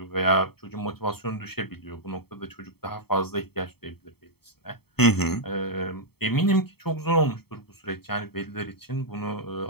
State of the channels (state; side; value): late; right; 0.96 ms